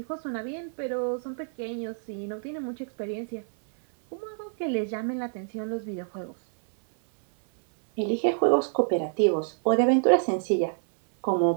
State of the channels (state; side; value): silent; left; 60 dB below the other